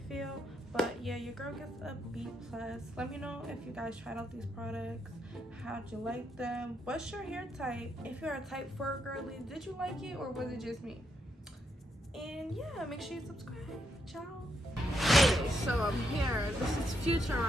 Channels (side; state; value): both; normal; correlation 0.79